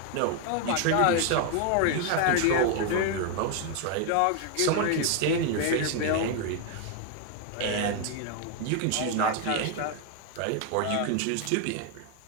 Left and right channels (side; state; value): both; different; correlation 0.01